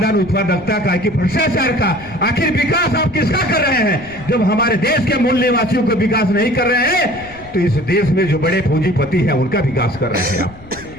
उत्पादकता का, कि भ्रष्टाचार का? आखिर विकास आप किसका कर रहे हैं? जब हमारे देश के मूल निवासियों का विकास नहीं कर रहे हैं तो इस देश में जो बड़े पूंजीपति हैं उनका विकास कर रहे हैं आप।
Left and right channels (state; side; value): noise; left; rumble, 21 dB below the sound